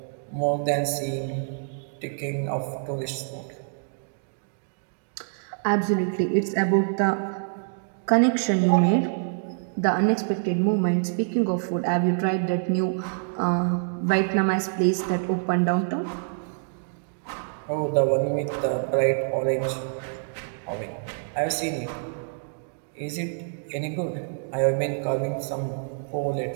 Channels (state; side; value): silent; left; digital silence